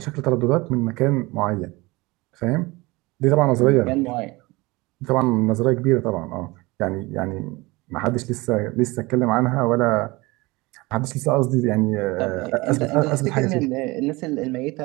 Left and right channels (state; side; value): quieter; left; 22.9 dB